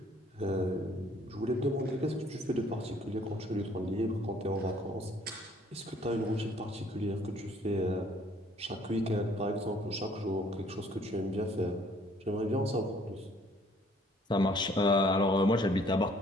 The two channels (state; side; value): normal; both; correlation 0.60